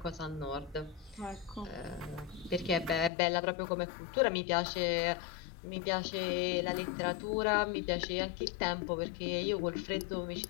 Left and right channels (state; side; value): drops out; right; at 3.1 s